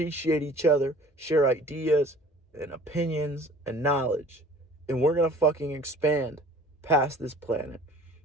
each other, share ideas and opinions and knowledge. And we're going to fucking expand past this planet.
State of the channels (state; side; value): normal; both; correlation 0.49